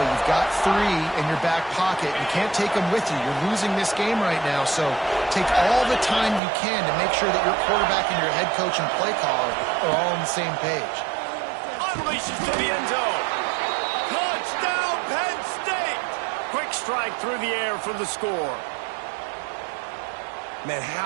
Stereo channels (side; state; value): left; drops out; at 6.4 s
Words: You've got 3 in your back pocket. You can't take them with you. You're losing this game right now, so take all the time you can to make sure that your quarterback and your head coach and play caller are all on the same page. Unleashes to the end zone. Touchdown, Penn State! Quick strike through the air for the score. Man,